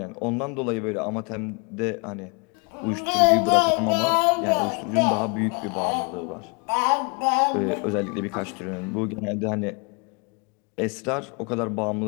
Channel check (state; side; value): quieter; right; 34.4 dB